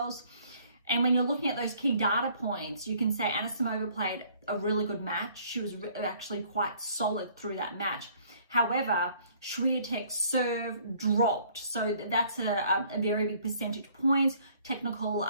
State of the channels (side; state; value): both; inverted; correlation -0.59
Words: And when you're looking at those key data points, you can say Anisimova played a really good match. She was actually quite solid through that match. However, Swiatek's serve dropped. So that's a very big percentage point. Technical